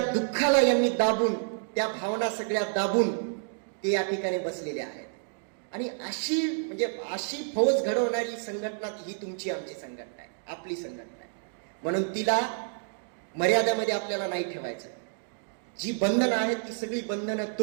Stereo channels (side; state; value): left; silent; digital silence